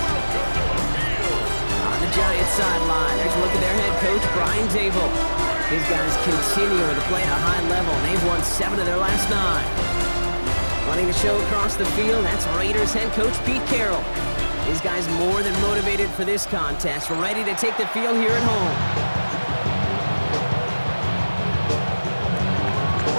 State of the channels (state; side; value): inverted; both; correlation -1.00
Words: On the Giants sideline, there's a look at their head coach, Brian Dable. His guys continue to play at a high level. They've won 7 of their last 9. Running the show across the field, that's Raiders head coach Pete Carroll. These guys more than motivated for this contest. We're ready to take the field here at home.